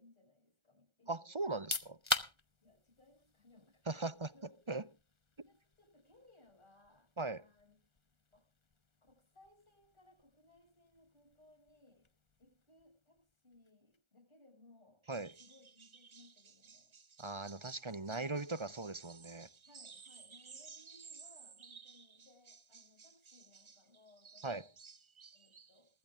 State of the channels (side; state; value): left; late; 1.4 ms